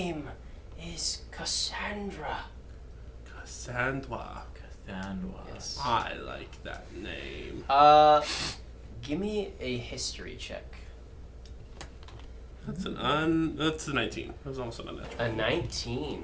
is Cassandra. Cassandra. Yes. I like that name. Give me a history check. That's a 19. That was almost an unnatural. A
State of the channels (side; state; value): both; identical; correlation 1.00